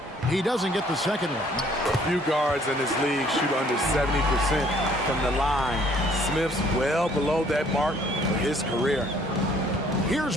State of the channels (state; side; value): normal; both; correlation 0.60